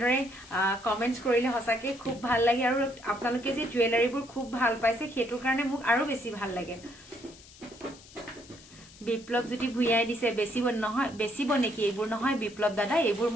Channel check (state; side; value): noise; left; hiss, 21 dB below the sound